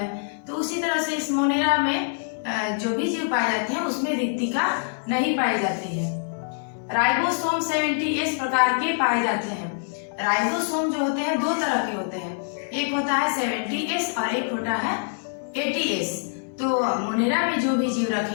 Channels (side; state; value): right; silent; digital silence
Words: तो उसी तरह से इस मोनेरा में जो भी जीव पाए जाते हैं उसमें रिक्तिका नहीं पाई जाती है। राइबोसोम 70S प्रकार के पाए जाते हैं। राइबोसोम जो होते हैं दो तरह के होते हैं, एक होता है 70S और एक होता है 80S। तो मोनेरा में जो भी जीव